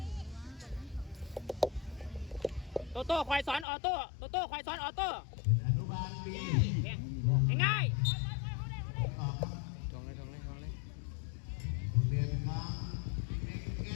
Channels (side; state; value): right; drops out; at 3.7 s